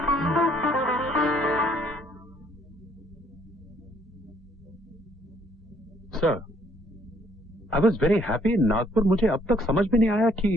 Sir, I was very happy in Nagpur. मुझे अब तक समझ में नहीं आया कि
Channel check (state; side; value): normal; both; correlation 0.65